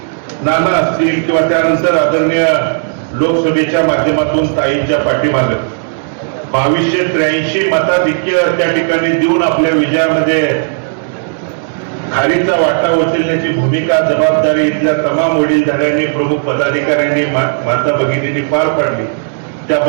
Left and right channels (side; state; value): left; silent; digital silence